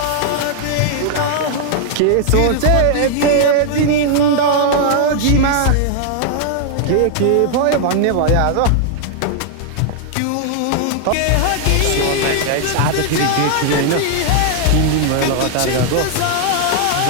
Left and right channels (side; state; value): both; different; correlation -0.01